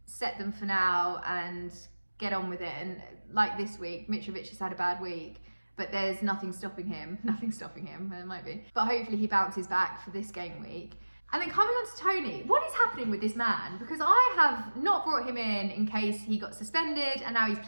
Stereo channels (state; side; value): inverted; both; correlation -1.00